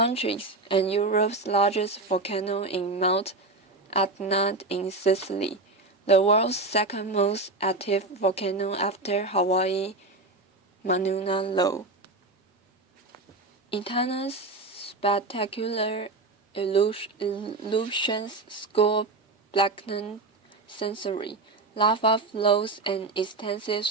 and Europe's largest volcano in Mount Etna in Sicily, the world's second most active volcano after Hawaii, Mauna Loa. Etna's spectacular illusions score blackened sensory, lava flows and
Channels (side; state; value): left; quieter; 3.2 dB